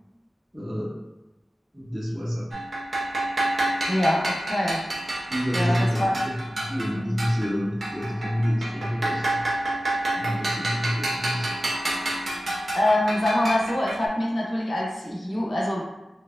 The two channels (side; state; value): both; normal; correlation 0.94